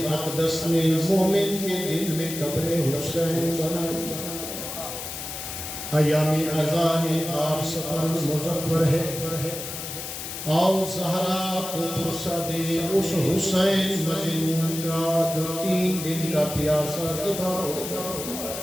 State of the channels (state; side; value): noise; left; hiss, 7 dB below the sound